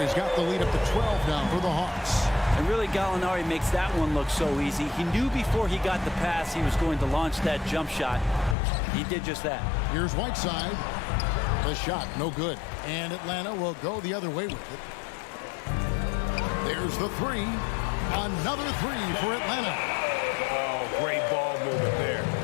got the lead up to 12 now for the Hawks. And really, Gallinari makes that one look so easy. He knew before he got the pass he was going to launch that jump shot. He did just that. Here's Whiteside. The shot, no good. And Atlanta will go the other way with it. There's the 3. Another 3 for Atlanta. Oh, great ball movement there.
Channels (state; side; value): drops out; right; at 8.6 s